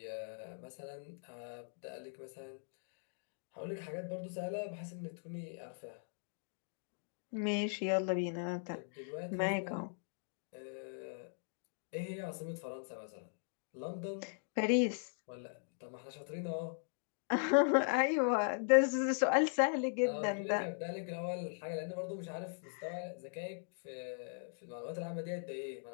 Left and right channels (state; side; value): silent; right; digital silence